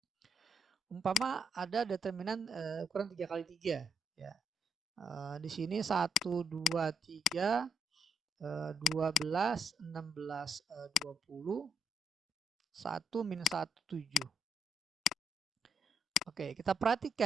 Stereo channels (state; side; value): normal; both; correlation 0.74